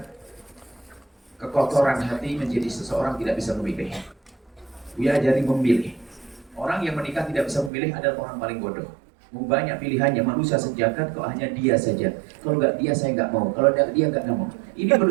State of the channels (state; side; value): drops out; left; at 7.7 s